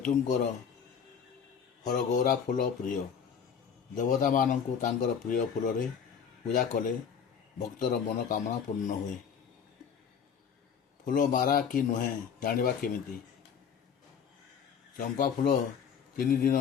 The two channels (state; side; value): quieter; right; 7.2 dB